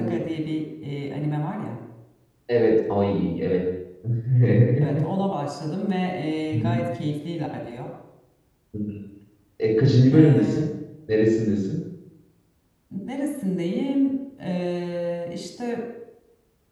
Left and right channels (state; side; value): identical; both; correlation 1.00